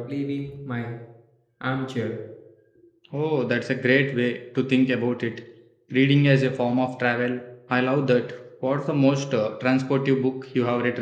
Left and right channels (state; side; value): identical; both; correlation 1.00